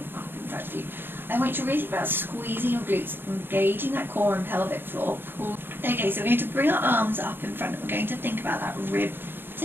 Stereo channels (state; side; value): late; left; 0.10 ms